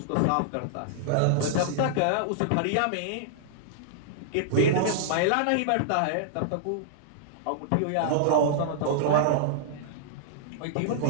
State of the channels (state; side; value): different; both; correlation -0.01